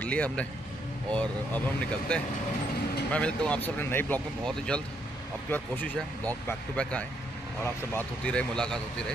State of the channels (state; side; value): normal; both; correlation 0.74